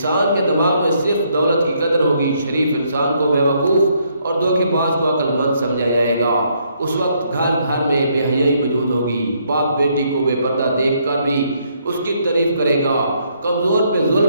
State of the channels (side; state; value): both; inverted; correlation -0.72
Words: کے دماغ میں صرف دولت کی قدر ہوگی، شریف انسان کو بیوقوف اور دھوکے باز کو عقل مند سمجھا جائے گا۔ اس وقت گھر گھر میں بے حیائی موجود ہوگی، باپ بیٹی کو بے پردہ دیکھ کر بھی اس کی تعریف کرے گا، کمزور پہ